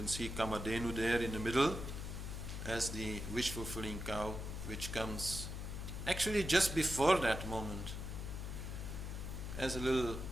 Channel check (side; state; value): left; noise; hum, 5 dB below the sound